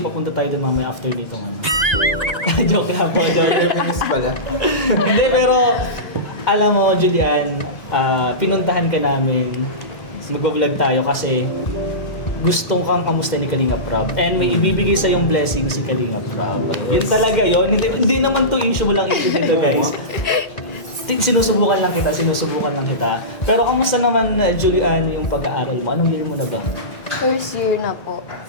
tayo dun mamaya after nito ano. Joke lang po. Reminis pala. Hindi, pero alam mo, Julian, pinuntahan ka namin, mag-vlog tayo kasi gustong kang kamusta ni Kalinga Prab. And may ibibigay sa yung blessing si Kalinga Prab. Yun talaga yun. Hindi naman to issue mo lang issue dito, guys. Sinusubukan lang kita. Pero kamusta naman, Julian, yung pag-aaral mo? Anong year mo na ba? First year na po.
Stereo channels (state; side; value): late; right; 1.9 ms